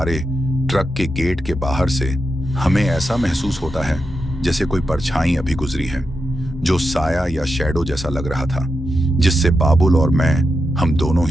ट्रक के गेट के बाहर से हमें ऐसा महसूस होता है जैसे कोई परछाई अभी गुजरी है, जो साया या शैडो जैसा लग रहा था, जिससे बाबुल और मैं हम दोनों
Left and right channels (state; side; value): noise; left; hum, 24 dB below the sound